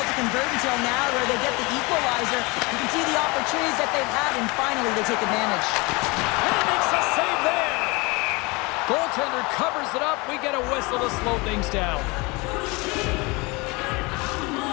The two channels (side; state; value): right; quieter; 26.1 dB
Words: to convert until now where they get the equalizer. You can see the opportunities that they've had, and finally they take advantage. And he makes a save there. Goaltender covers it up. We get a whistle to slow things down.